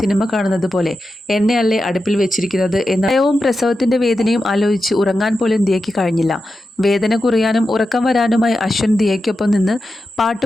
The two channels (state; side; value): normal; both; correlation 0.90